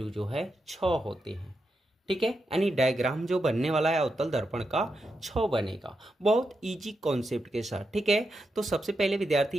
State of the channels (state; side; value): normal; both; correlation 0.86